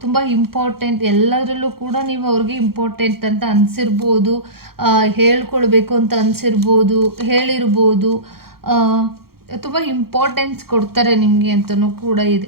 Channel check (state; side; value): late; left; 0.94 ms